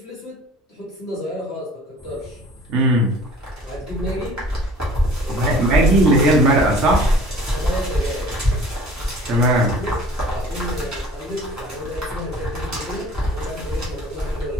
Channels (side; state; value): both; normal; correlation 0.48